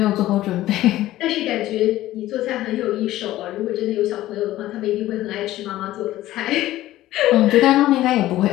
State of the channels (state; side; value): quieter; right; 15.2 dB